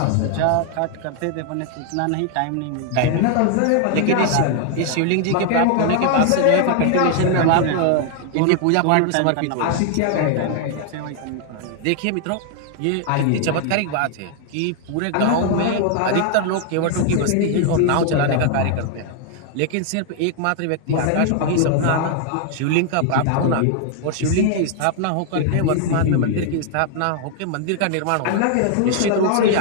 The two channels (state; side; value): different; both; correlation 0.00